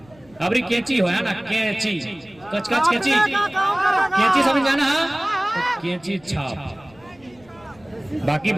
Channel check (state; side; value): noise; left; rumble, 27 dB below the sound